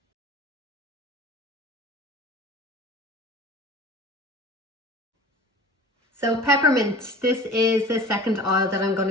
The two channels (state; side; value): normal; both; correlation 0.42